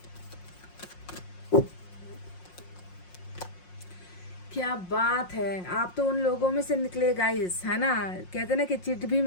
क्या बात है, आप तो उन लोगों में से निकले गाइस, है ना। कहते ना कि चिट भी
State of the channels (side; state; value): right; late; 5.6 ms